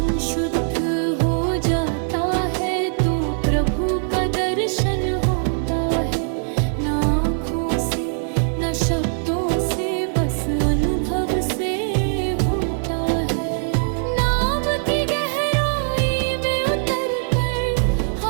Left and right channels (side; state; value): left; silent; 65 dB below the other